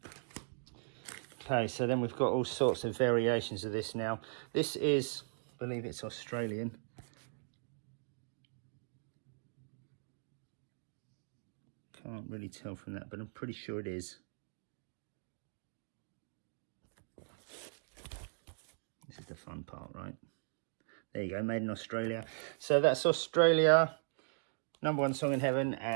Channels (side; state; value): left; silent; digital silence